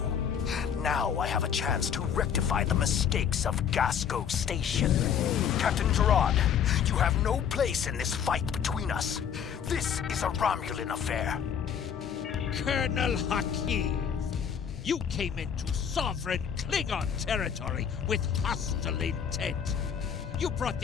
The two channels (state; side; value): quieter; right; 7.9 dB